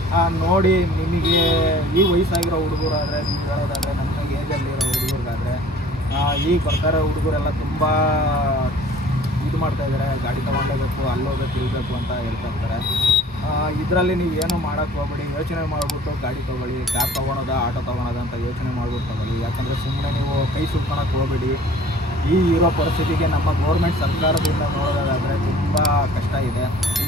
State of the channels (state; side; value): normal; both; correlation 0.50